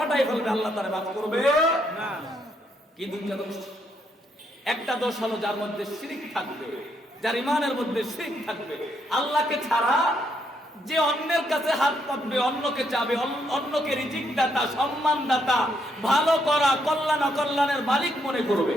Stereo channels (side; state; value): both; normal; correlation 0.75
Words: ফেলবে, আল্লাহ তাআলা মাফ করবে না। কি 2টা দোষ? একটা দোষ হলো যার মধ্যে শিরক থাকবে, যার ঈমানের মধ্যে শিরক থাকবে। আল্লাহকে ছাড়া যে অন্যের কাছে হাত পাতবে, অন্যকে চাবে, অন্যকে রিজিক দাতা, সম্মান দাতা, ভালো করা, কল্যাণ অকল্যাণের মালিক মনে করবে,